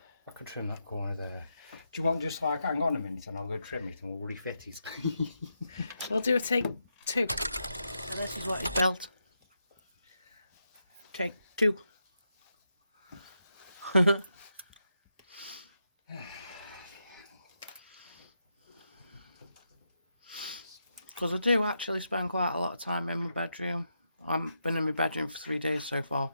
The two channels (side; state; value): both; inverted; correlation -0.84